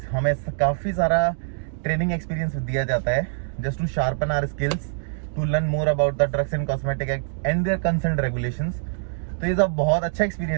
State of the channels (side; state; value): left; silent; digital silence